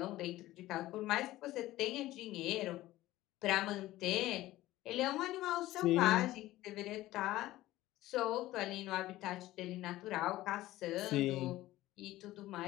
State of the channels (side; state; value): right; quieter; 16.3 dB